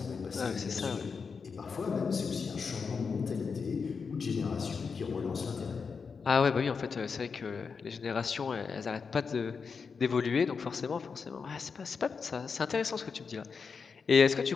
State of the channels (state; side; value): quieter; right; 5.4 dB